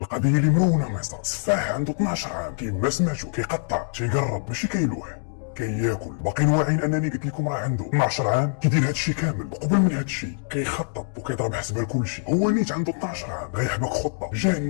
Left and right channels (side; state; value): right; silent; digital silence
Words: القضيه اللي مرونه مصر. سفاح عنده 12 عام كيما سمعتو كيقطع تيقرب ماشي كيلوح كياكل. باقيين واعيين انني قلت لكم راه عنده 12 عام كيدير هادشي كامل. وقبل من هادشي كيخطط وكيضرب حسبه لكلشي. هو نيت عنده 12 عام غيحبك خطه